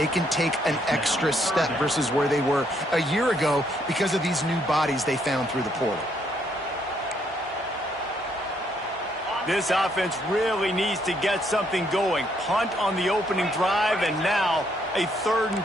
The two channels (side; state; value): both; normal; correlation 0.71